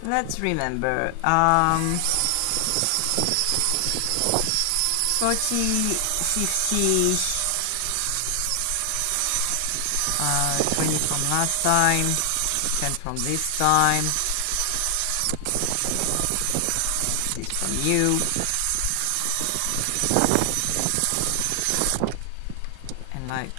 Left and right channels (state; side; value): different; both; correlation 0.00